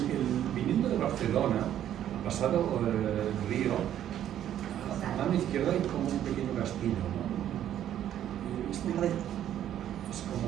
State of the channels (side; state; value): left; quieter; 11.0 dB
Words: viniendo de Barcelona, ha pasado el río, a la mano izquierda hay como un pequeño castillo, ¿no? Es como es